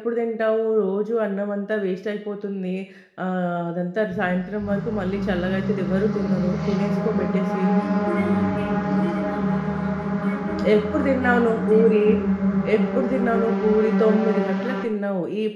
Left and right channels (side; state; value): both; identical; correlation 1.00